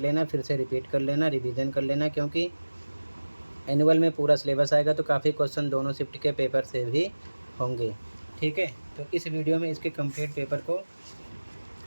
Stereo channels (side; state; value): both; inverted; correlation -1.00